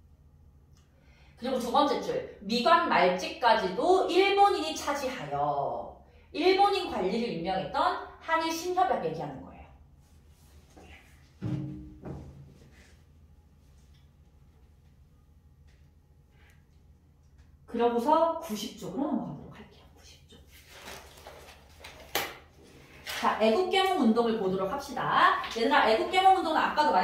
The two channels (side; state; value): both; identical; correlation 1.00